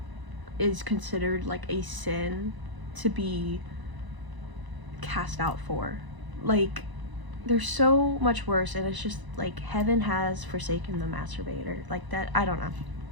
is considered like a sin to be cast out for. Like, there's so much worse, and it's just like heaven has forsaken the masturbator. Like that, I don't know.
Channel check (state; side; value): late; left; 1.0 ms